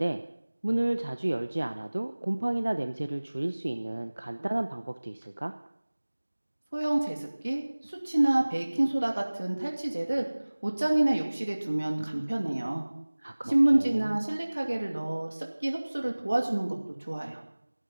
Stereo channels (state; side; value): inverted; both; correlation -1.00